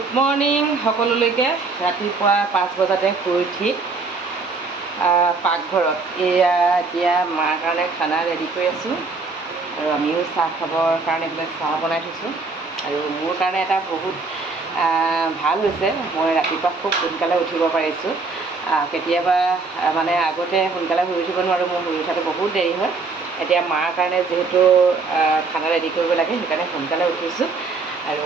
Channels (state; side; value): quieter; left; 4.1 dB